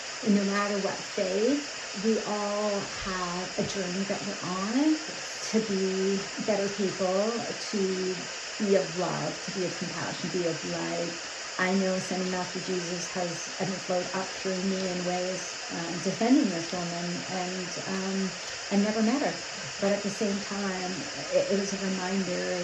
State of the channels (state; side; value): identical; both; correlation 1.00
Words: and no matter what faith, we all have a journey that we're on to be better people, to be of love, to be of compassion, be of light. I know Sending Master Jesus has flowed up through me in ways defending this woman, and never met her. But at the same time, it was a reminder